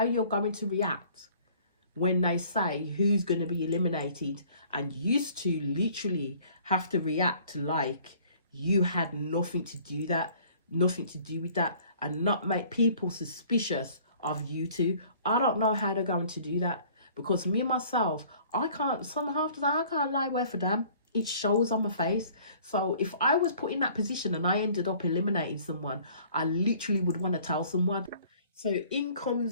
you're going to react when they say who's going to be eliminated, and used to literally have to react like you had nothing to do with that, and not make people suspicious of you two. I don't know how they're going to do that, because me myself, I can't lie where for them. It shows on my face. So if I was put in that position and I ended up eliminating someone, I literally would want to tell someone. So in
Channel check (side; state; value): both; inverted; correlation -0.54